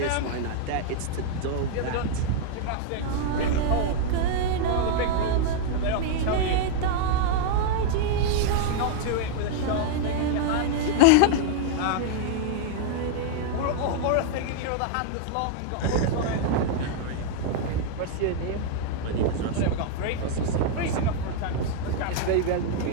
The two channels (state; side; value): different; both; correlation -0.01